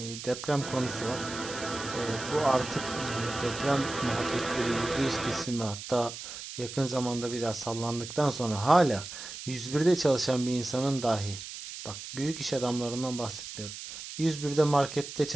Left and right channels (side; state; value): right; noise; hiss, 10 dB below the sound